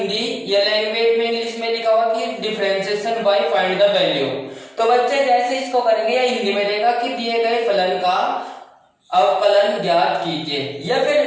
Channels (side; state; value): both; identical; correlation 1.00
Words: या लैंग्वेज में इंग्लिश में लिखा हुआ कि differentiation bye find the value. तो बच्चे जैसे इसको करेंगे या हिंदी में देगा कि दिए गए फलन का अवकलन ज्ञात कीजिए, या